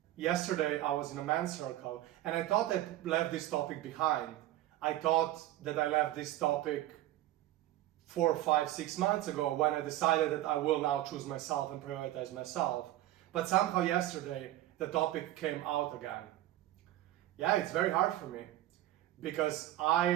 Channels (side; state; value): left; quieter; 14.6 dB